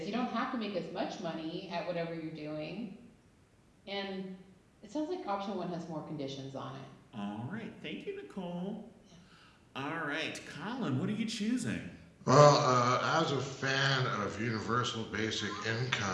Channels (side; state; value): both; identical; correlation 1.00